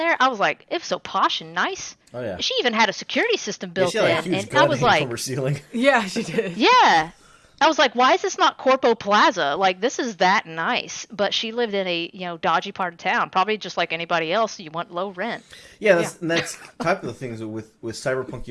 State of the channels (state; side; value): identical; both; correlation 1.00